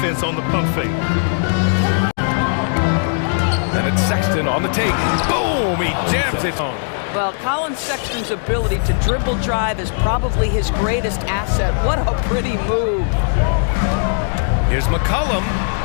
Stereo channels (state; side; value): silent; right; digital silence